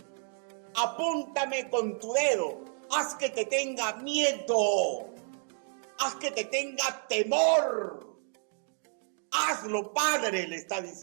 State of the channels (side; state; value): left; silent; 57 dB below the other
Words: Apúntame con tu dedo. Haz que te tenga miedo. Haz que te tenga temor. Hazlo, Padre, le está